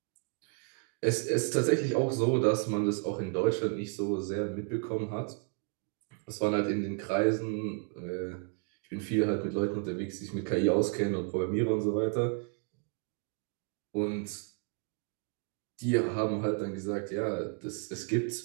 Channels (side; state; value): left; quieter; 37.2 dB